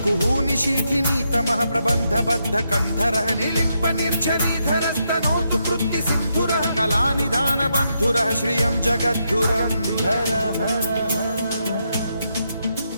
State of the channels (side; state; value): both; inverted; correlation -0.81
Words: कुहूनि शीथिनी तमः प्रबन्ध बद्ध कन्धरः निलिम्प निर्झरीधर स्तनोतु कृत्ति सिन्धुरः कलानिधान बन्धुरः श्रियं जगद्धुरन्धरः